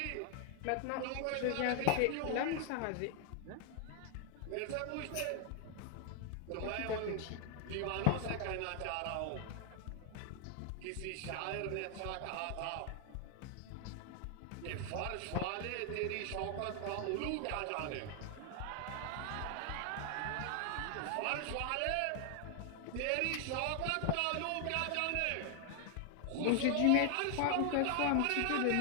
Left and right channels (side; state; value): both; different; correlation 0.00